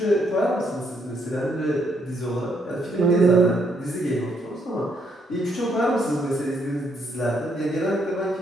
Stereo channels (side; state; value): both; normal; correlation 0.73